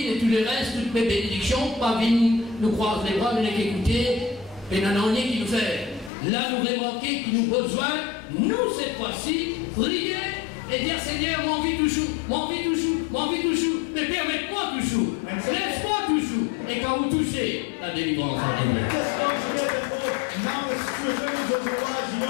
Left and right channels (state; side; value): drops out; right; at 6.1 s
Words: et tout le reste, toutes mes bénédictions, pas venir nous croiser les bras, nous écouter, et n'en a rien qui nous fait. Là, nous remarquons qu'il nous a besoin, nous, cette fois-ci, prier et dire Seigneur, mon vie toujours, mon vie toujours, mon vie toujours, mais permette-moi toujours, laisse-moi toujours, et quand vous touchez, la délivrance en est. Just consider that now the situation is otherwise, you